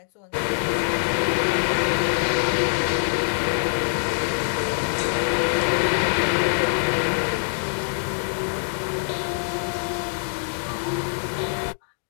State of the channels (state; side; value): silent; right; digital silence